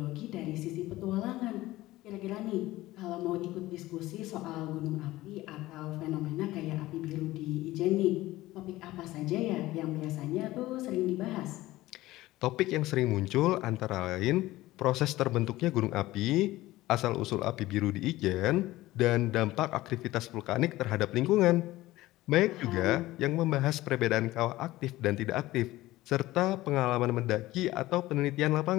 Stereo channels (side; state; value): right; quieter; 17.3 dB